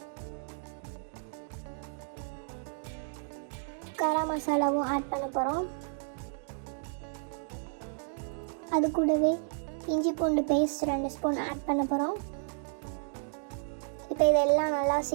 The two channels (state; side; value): silent; left; digital silence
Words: கரம் மசாலாவும் ஆட் பண்ண போகிறோம். அது கூடவே இஞ்சி பூண்டு பேஸ்ட் 2 ஸ்பூன் ஆட் பண்ண போகிறோம். இப்போ இதெல்லாம் நல்லா